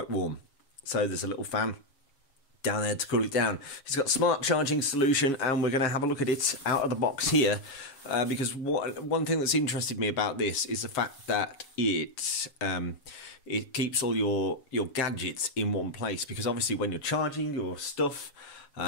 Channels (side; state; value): right; late; 7.2 ms